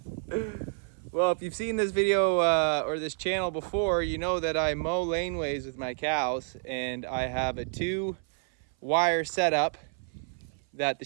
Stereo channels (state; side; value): silent; left; 56 dB below the other